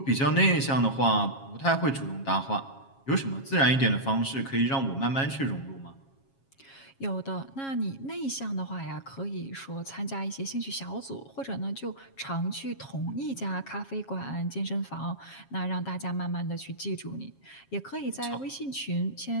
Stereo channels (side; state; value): right; late; 7.4 ms